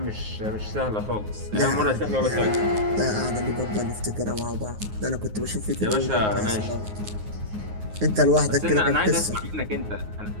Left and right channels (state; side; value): late; left; 9.5 ms